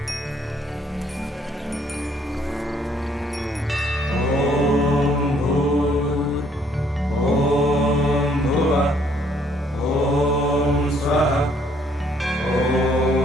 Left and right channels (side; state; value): both; normal; correlation 0.65